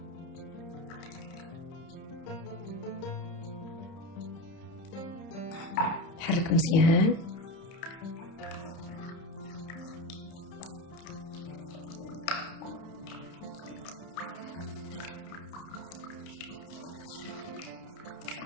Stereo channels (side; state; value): right; late; 31 ms